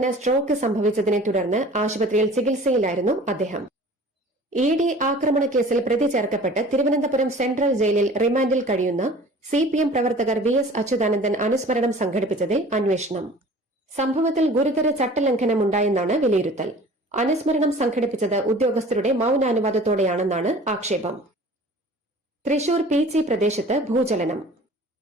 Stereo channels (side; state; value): both; normal; correlation 0.45